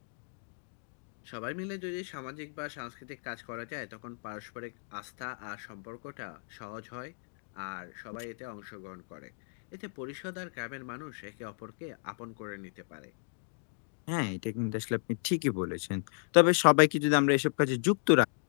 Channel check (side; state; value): right; silent; digital silence